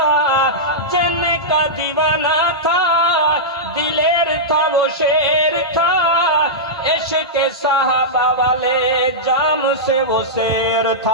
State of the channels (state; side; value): normal; both; correlation -0.11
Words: جن کا دیوانہ تھا دلیر تھا وہ شیر تھا، عشق صحابہ والے جام سے وہ سیر